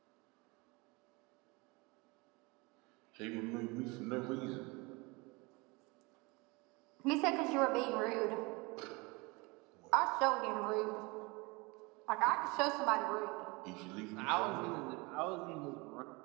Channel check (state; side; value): quieter; left; 26.1 dB